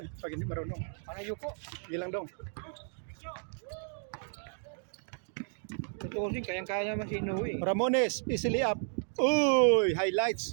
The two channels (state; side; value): silent; left; 56 dB below the other